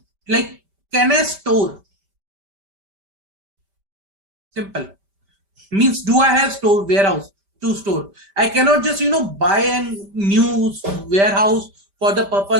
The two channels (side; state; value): left; late; 5.1 ms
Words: like, can I store? Simple. Means, do I have warehouse to store? I cannot just buy a new warehouse for the